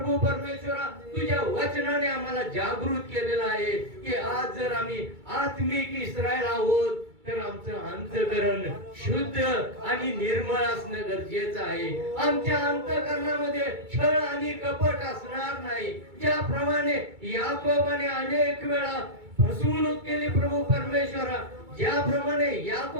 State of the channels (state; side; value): late; left; 2.3 ms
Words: परमेश्वरा तुझ्या वचनाने आम्हाला जागृत केलेला आहे की आज जर आम्ही आत्मिक इस्रायल आहोत तर आमचं अंतःकरण शुद्ध आणि निर्मळ असणं गरजेचं आहे। आमच्या अंतःकरणामध्ये छळ आणि कपट असणार नाही। ज्याप्रमाणे याकोबाने अनेक वेळा फसवणूक केली प्रभू परमेश्वरा, ज्याप्रमाणे